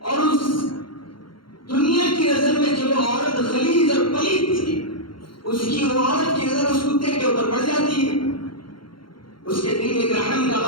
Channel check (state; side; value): late; right; 0.73 ms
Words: اور اس دنیا کی نظر میں جو عورت غلیظ اور پلید تھی، اس کی وہ عورت کی نظر اس کتے کے اوپر پڑ جاتی ہے. اس کے دل میں رحم کا